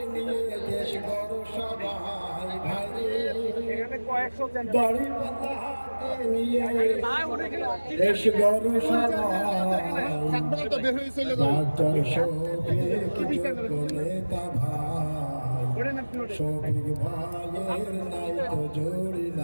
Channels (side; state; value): both; inverted; correlation -1.00